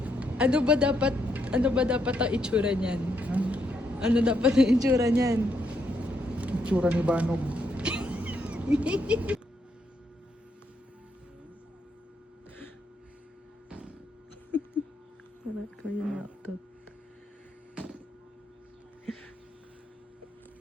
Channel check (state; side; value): normal; both; correlation 0.77